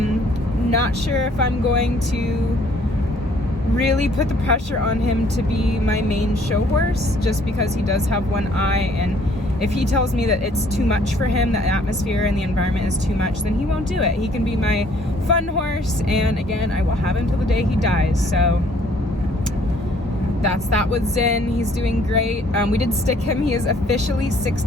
sure if I'm going to really put the pressure on him to be my main show horse, just because he does have one eye, and if he tells me that it's too much for him, the atmosphere and the environment is too much, then he won't do it. He can be my fun horse, and again, I will have him till the day he dies. So that's that with Zin. He's doing great. We did stick him. He is officially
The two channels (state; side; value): normal; both; correlation 0.61